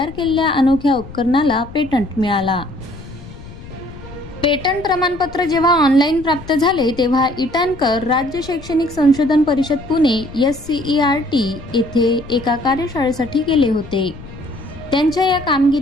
केलेल्या अनोख्या उपकरणाला पेटंट मिळाला। पेटंट प्रमाणपत्र जेव्हा ऑनलाईन प्राप्त झाले तेव्हा इटानकर राज्य शैक्षणिक संशोधन परिषद पुणे SCERT येथे एका कार्यशाळेसाठी गेले होते। त्यांच्या या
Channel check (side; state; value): left; noise; rumble, 16 dB below the sound